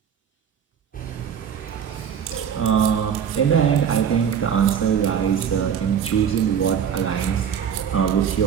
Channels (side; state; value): left; quieter; 8.0 dB